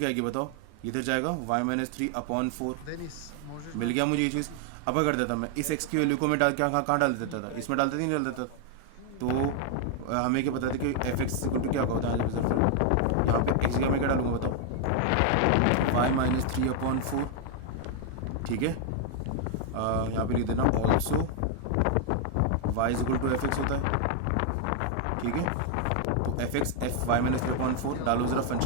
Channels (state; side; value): different; both; correlation 0.00